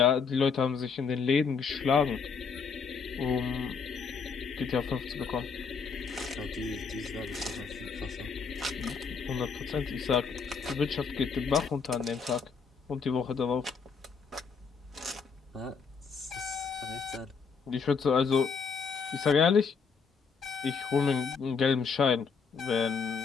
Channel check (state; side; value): quieter; right; 5.6 dB